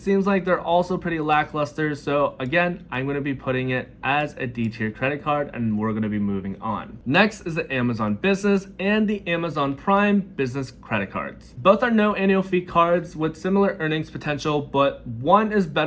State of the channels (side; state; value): both; identical; correlation 1.00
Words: like they're also pretty lackluster, so again, I'm going to be putting it as a D-tier credit card, and we're going to be moving on. Next is the Amazon Business and the Amazon Prime Business Credit Cards. Both are no annual fee cards with similar earnings potential, but one is